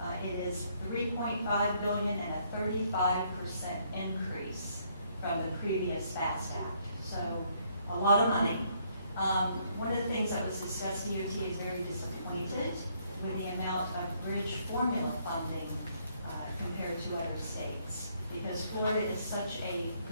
It is $3.5 billion and a 35% increase from the previous FAST Act. So a lot of money. One of the things that was discussed, DOT is very disappointed with the amount of bridge formula funding compared to other states, because Florida is such a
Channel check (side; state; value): both; inverted; correlation -0.69